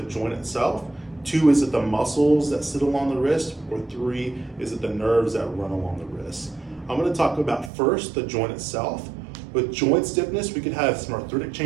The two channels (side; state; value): left; drops out; at 7.7 s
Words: joint itself? Two, is it the muscles that sit along the wrist? Or three, is it the nerves that run along the wrist? I'm going to talk about first the joint itself. With joint stiffness, we could have some arthritic